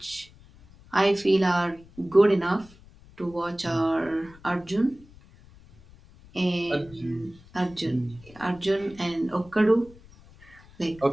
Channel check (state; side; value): noise; left; rumble, 24 dB below the sound